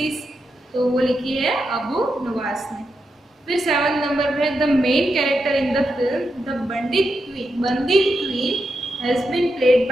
तो वो लिखी है अबू नवास ने। फिर 7 नंबर पे the main character in the film the bandit queen has been played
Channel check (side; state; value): both; normal; correlation 0.86